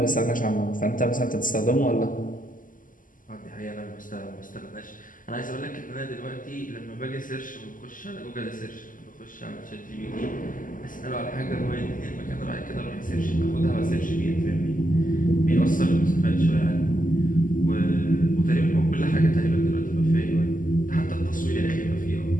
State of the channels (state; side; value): late; right; 0.39 ms